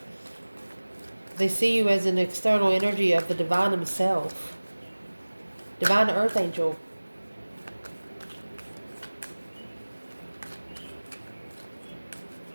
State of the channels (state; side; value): inverted; both; correlation -1.00